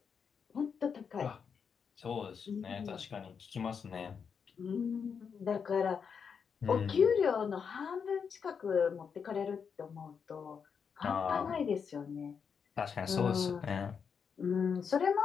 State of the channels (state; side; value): quieter; right; 6.5 dB